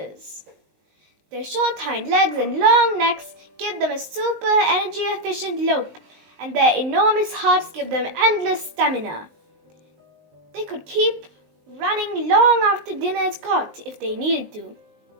Their short hind legs and long necks give them a super energy efficient lope, and their enormous hearts give them endless stamina. They could keep running long after dinner is caught if they needed to.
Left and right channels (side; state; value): left; late; 19 ms